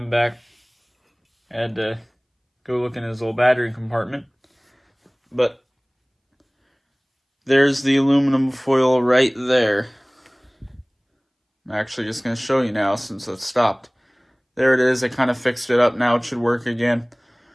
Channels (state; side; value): identical; both; correlation 1.00